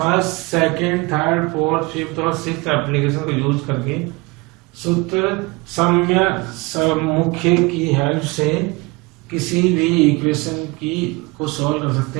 second, third, fourth, fifth और सिक्स्थ एप्लीकेशन को यूज करके सूत्र साम्य मुख्य की हेल्प से किसी भी इक्वेशन की को सॉल्व कर सकते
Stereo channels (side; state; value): left; quieter; 25.3 dB